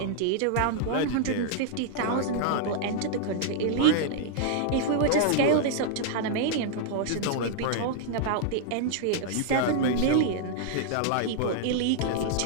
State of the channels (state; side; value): different; both; correlation -0.01